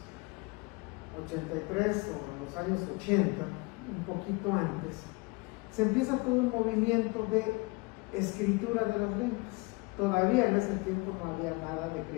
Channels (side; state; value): right; quieter; 27.1 dB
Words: o en los años 80, un poquito antes, se empieza todo un movimiento de escritura de las lenguas. Todavía en ese tiempo no había nada de